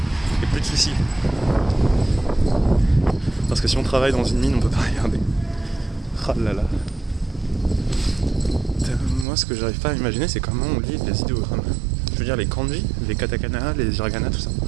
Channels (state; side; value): drops out; left; at 9.2 s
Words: et plus de soucis. Parce que si on travaille dans une mine, on peut pas regarder. Ah là là. Moi, ce que j'arrive pas à imaginer, c'est comment on lit les idéogrammes. Je veux dire, les kanji, les katakana, les hiragana, tout ça.